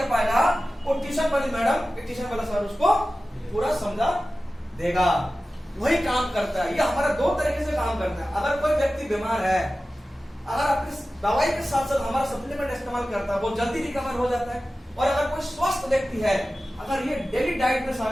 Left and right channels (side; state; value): both; normal; correlation 0.95